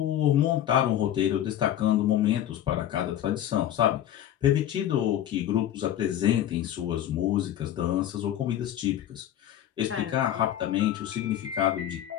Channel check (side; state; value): right; quieter; 11.5 dB